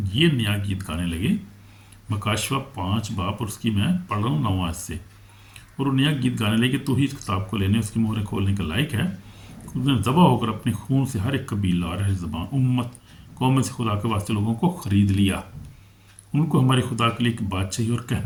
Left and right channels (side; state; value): both; identical; correlation 1.00